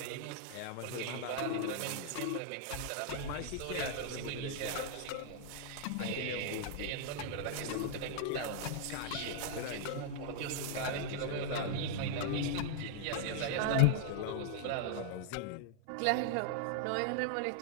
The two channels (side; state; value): both; different; correlation 0.00